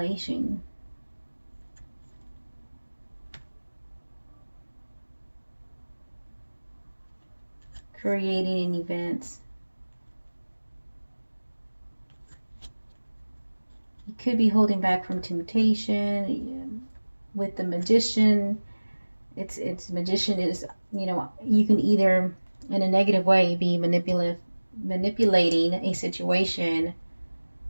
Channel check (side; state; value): both; inverted; correlation -1.00